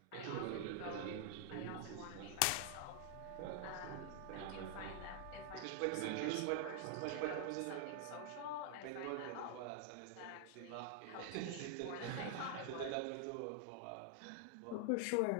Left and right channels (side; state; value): both; different; correlation 0.00